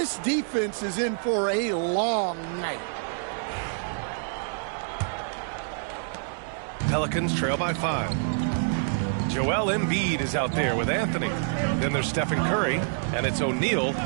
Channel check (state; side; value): silent; left; 60 dB below the other